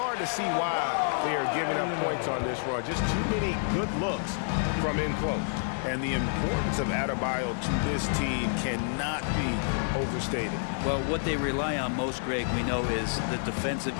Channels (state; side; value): silent; right; digital silence